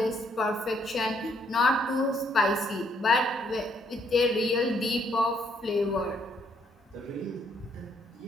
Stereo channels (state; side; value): normal; both; correlation 0.70